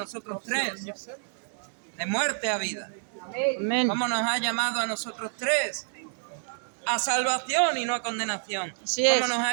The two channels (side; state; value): left; silent; digital silence